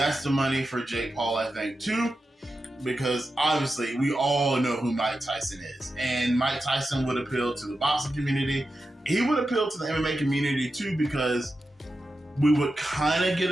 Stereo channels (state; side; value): normal; both; correlation 0.90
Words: the money for Jake Paul, I think, too. Because obviously we all know who Mike Tyson is. And Mike Tyson would appeal to the boxing community. He would appeal to the MMA community too, because we would kind of get